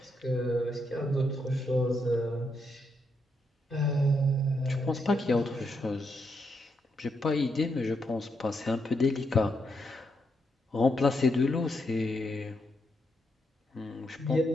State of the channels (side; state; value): both; normal; correlation 0.80